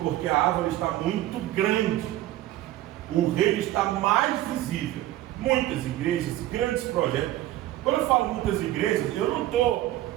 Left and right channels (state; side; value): quieter; left; 14.7 dB